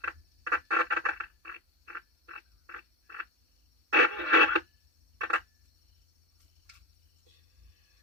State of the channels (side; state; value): left; late; 3.6 ms